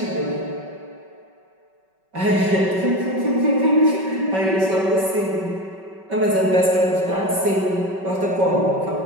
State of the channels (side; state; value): left; late; 5.3 ms